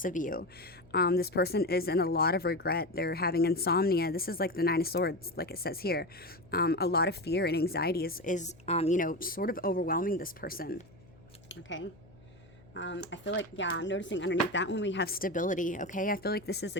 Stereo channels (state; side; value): noise; left; hum, 25 dB below the sound